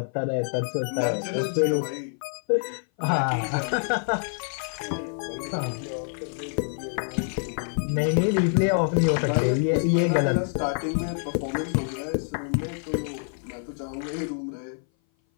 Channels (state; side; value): silent; right; 57 dB below the other